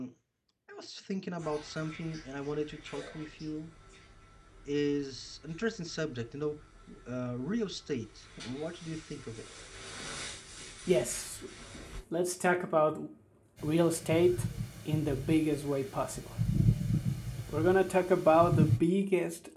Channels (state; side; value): identical; both; correlation 1.00